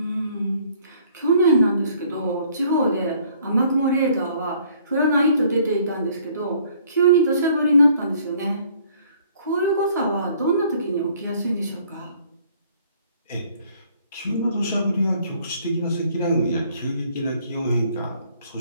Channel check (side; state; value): both; inverted; correlation -0.60